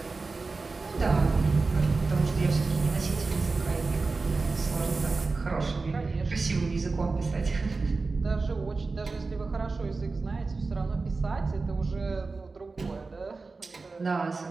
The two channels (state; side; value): quieter; left; 3.9 dB